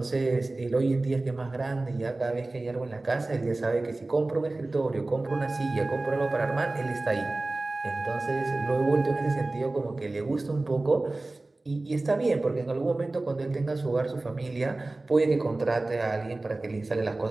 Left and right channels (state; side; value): quieter; left; 3.0 dB